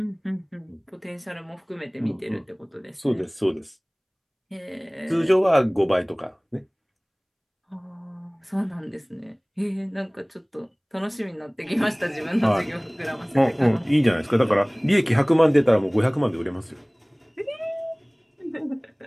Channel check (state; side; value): identical; both; correlation 1.00